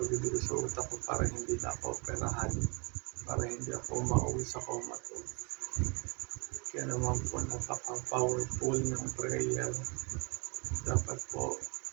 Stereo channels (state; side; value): quieter; left; 31.9 dB